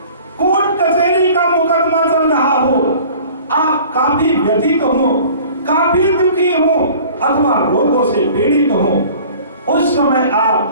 कोर्ट कचहरी का मुकदमा चल रहा हो, आप काफी व्यथित हो, काफी दुखी हो अथवा रोगों से पीड़ित हो, उस समय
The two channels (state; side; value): inverted; both; correlation -0.47